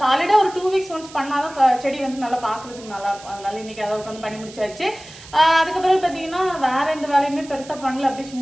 சாலிடா ஒரு 2 வீக்ஸ் ஒன்ஸ் பண்ணாதான் செடி வந்து நல்லா பாக்குறதுக்கு நல்லா இருக்கும். அதனால இன்னைக்கு அதை உட்காந்து பண்ணி முடிச்சாச்சு. அதுக்கப்புறம் பாத்தீங்கன்னா வேற எந்த வேலையுமே பெருசா பண்ணல. அப்படியே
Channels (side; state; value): right; noise; hiss, 19 dB below the sound